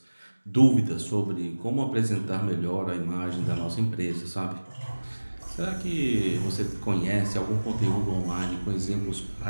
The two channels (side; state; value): both; inverted; correlation -1.00